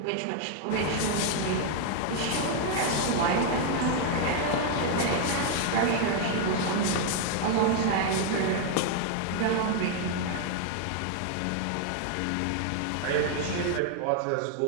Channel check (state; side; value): different; both; correlation 0.00